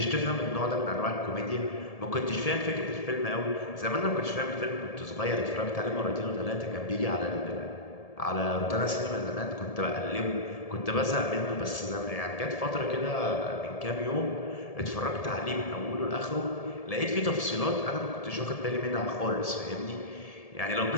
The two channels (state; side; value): late; right; 1.7 ms